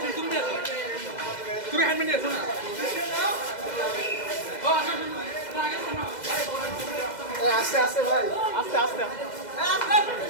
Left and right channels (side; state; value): right; late; 2.0 ms